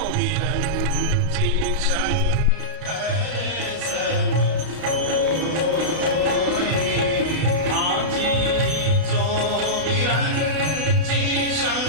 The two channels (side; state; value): left; late; 32 ms